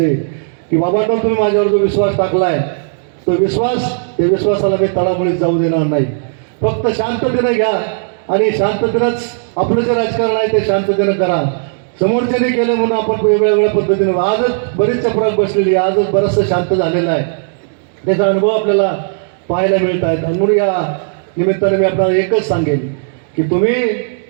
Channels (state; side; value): silent; left; digital silence